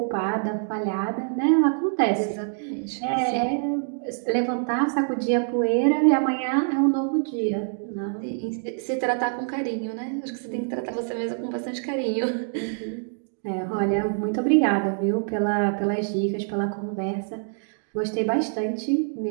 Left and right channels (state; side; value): silent; left; 61 dB below the other